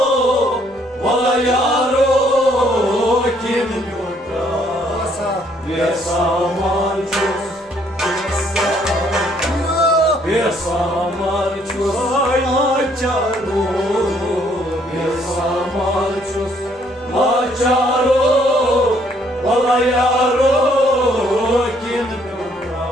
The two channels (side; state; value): both; normal; correlation 0.66